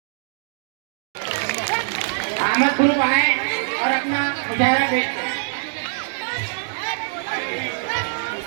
अहमद ग्रुप आए और अपना मुजाहरा पेश करें।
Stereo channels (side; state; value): left; silent; digital silence